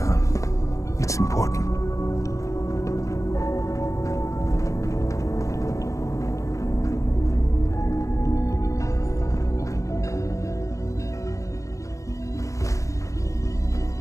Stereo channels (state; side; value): late; right; 0.15 ms